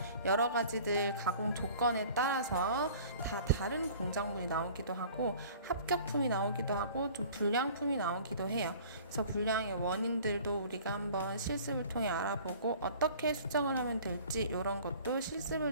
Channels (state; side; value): inverted; both; correlation -0.48